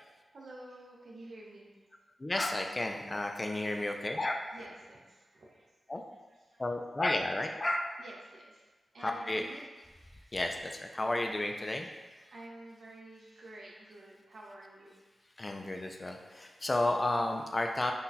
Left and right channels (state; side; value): normal; both; correlation 0.96